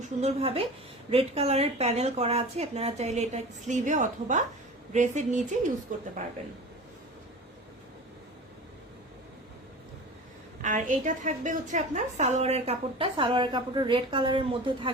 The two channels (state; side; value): normal; both; correlation 0.35